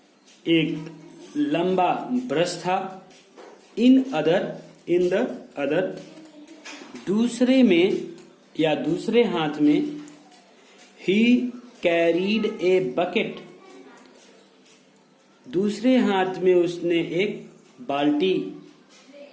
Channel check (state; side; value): identical; both; correlation 1.00